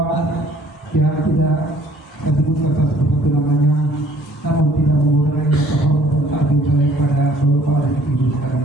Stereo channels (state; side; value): normal; both; correlation 0.57